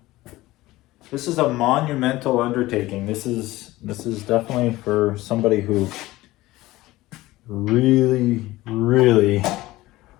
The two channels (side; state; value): right; quieter; 18.0 dB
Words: This is a monumental undertaking. This is definitely for somebody who really, really